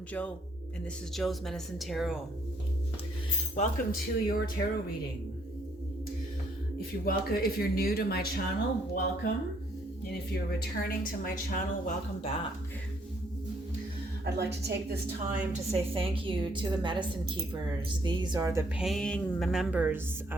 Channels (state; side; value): normal; both; correlation 0.68